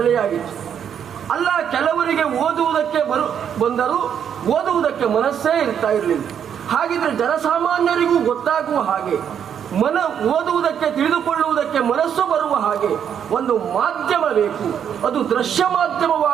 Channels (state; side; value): quieter; left; 8.5 dB